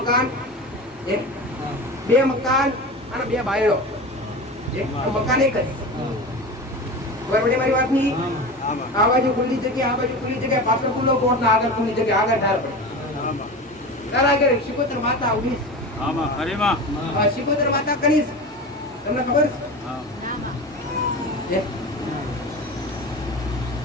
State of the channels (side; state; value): both; normal; correlation 0.29